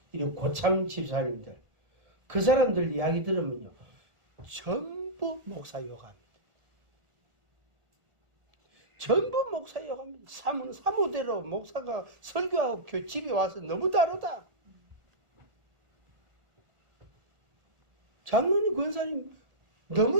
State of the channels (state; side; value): late; left; 1.4 ms